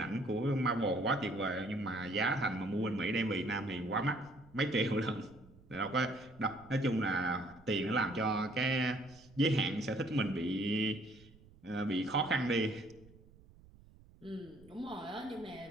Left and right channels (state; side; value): noise; right; rumble, 24 dB below the sound